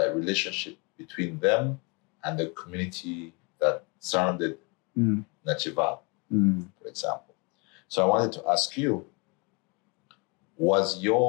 relationship between them and the community that surrounded Nachiva, for example. So I wanted to ask you, was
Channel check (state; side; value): quieter; right; 32.3 dB